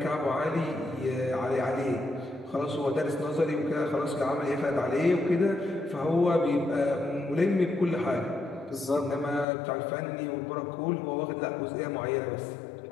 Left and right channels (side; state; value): right; drops out; at 9.5 s